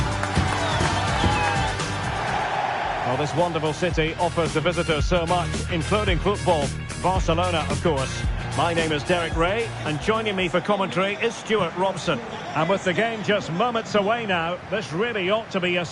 Well, this wonderful city offers the visitors so much, including football. Barcelona, of course. My name is Derek Ray, and joining me for commentary is Stuart Robson. And with the game just moments away now, this really ought to be a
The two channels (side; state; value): both; identical; correlation 1.00